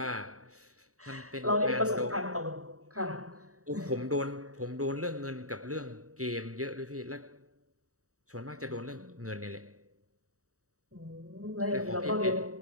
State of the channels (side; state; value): left; late; 0.65 ms